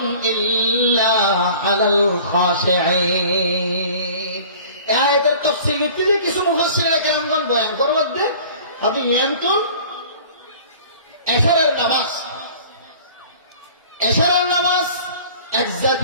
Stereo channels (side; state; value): both; inverted; correlation -0.46